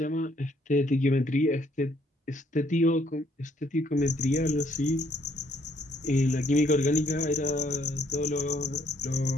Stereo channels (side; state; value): both; normal; correlation 0.67